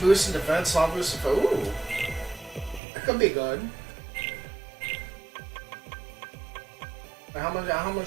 in defense, small boost in ooh. That could be good. How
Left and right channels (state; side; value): drops out; left; at 2.8 s